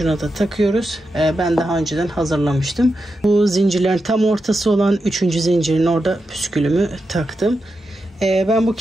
da takıyoruz. Ben daha önceden hazırlamıştım. Bu zincirlerin tam ortası olan 3. zincirin orada püskülümü taktım. Ben bu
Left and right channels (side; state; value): both; normal; correlation 0.88